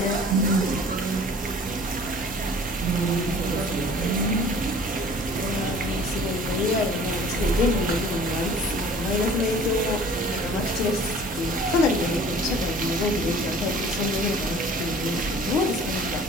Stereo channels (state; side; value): normal; both; correlation 0.49